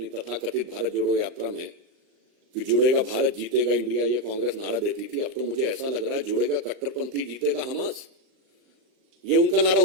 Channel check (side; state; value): left; late; 38 ms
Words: तथाकथित भारत जोड़ो यात्रा में, कि जुड़ेगा भारत जीतेगा इंडिया, ये कांग्रेस नारा देती थी। अब तो मुझे ऐसा लग रहा है जुड़ेगा कट्टरपंथी जीतेगा हमास, ये उनका नारा